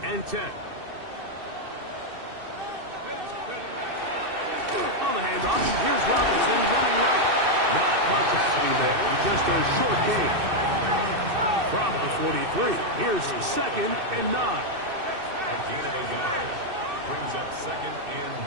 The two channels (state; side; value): late; left; 2.6 ms